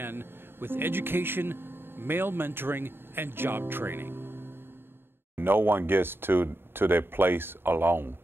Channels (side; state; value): left; late; 0.11 ms